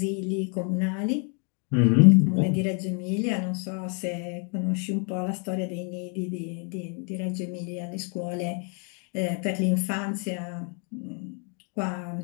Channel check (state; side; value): quieter; right; 38.0 dB